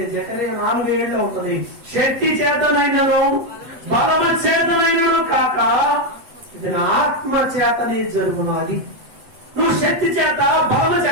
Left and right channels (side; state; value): left; late; 8.0 ms